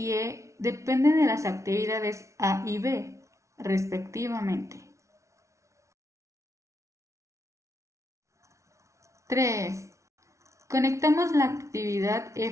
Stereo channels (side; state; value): left; late; 0.14 ms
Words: E depende de las actividades A y B, respectivamente. 3. Conectamos la actividad